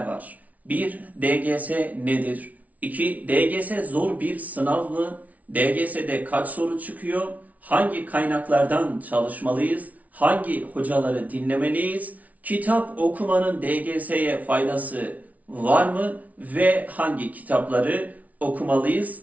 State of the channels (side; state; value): left; late; 0.071 ms